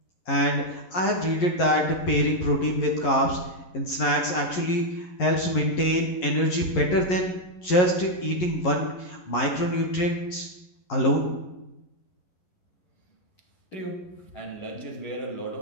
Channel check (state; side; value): late; right; 11 ms